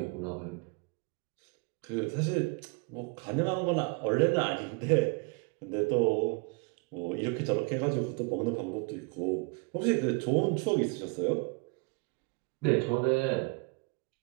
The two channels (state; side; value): quieter; left; 30.6 dB